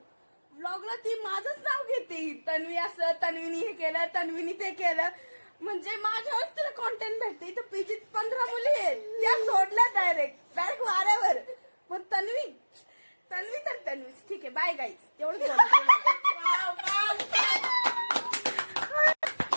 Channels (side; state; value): both; inverted; correlation -1.00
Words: व्लॉगला ती माझंच नाव घेते. तन्वी असं, तन्वीनी हे केलं, तन्वीनी ते केलं, म्हणजे माझ्यावर तिला कॉन्टेंट भेटते. इथं पीजीत 15 मुली आहेत, त्या सोडल्या डायरेक्ट वाऱ्यावर. मग तन्वी तर तन्वी. ठीक आहे, बाय गाईज. एवढंच